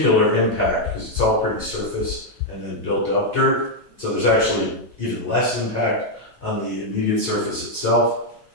impact because it's all pretty surface and then built up dirt. So there's actually even less impact on the immediate surface itself.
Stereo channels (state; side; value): normal; both; correlation -0.01